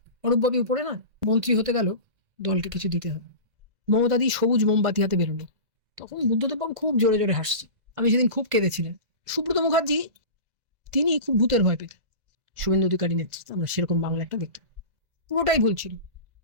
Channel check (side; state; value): left; late; 2.0 ms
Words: অরূপবাবু উপরে না, মন্ত্রী হতে গেল, দলকে কিছু দিতে হবে। মমতাদি সবুজ মোমবাতি হাতে বেরোলো, তখন বুদ্ধদেব বাবু খুব জোরে জোরে হাসছে। আমি সেদিন খুব কেঁদেছিলেন। সুব্রত মুখার্জি তিনি খুব ভূতের ভয় পেতেন। শুভেন্দু অধিকারী নেতৃত্বে আমরা সেরকম বাংলা একটা দেখতাম। পুরোটাই ভুল ছিল,